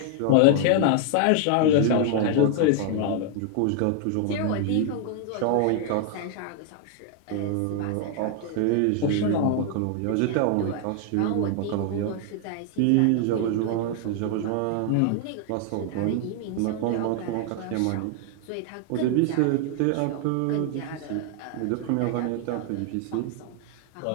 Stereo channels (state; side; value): different; both; correlation 0.00